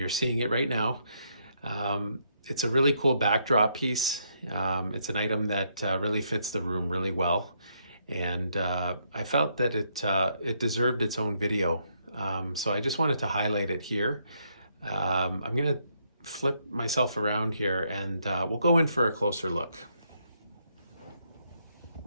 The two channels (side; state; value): both; inverted; correlation -0.75